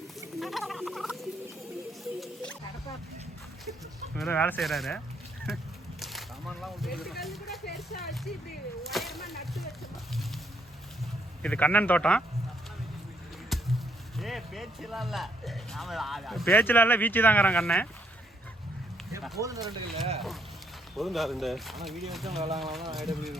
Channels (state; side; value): normal; both; correlation 0.72